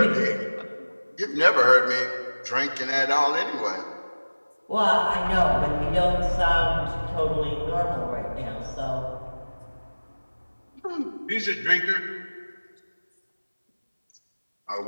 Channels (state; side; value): inverted; both; correlation -1.00